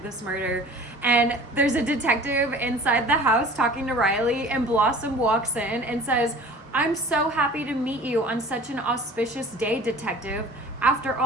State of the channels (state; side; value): normal; both; correlation 0.45